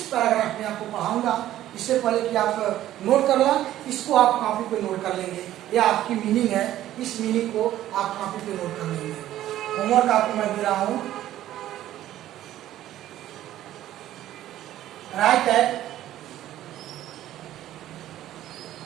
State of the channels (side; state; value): left; quieter; 13.2 dB